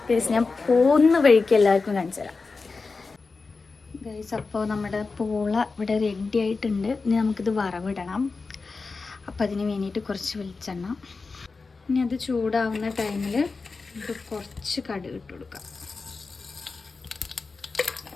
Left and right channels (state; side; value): quieter; right; 4.2 dB